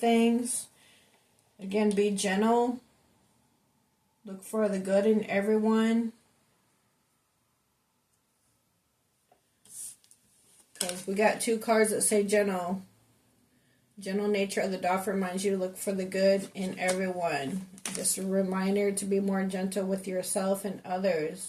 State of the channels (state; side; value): identical; both; correlation 1.00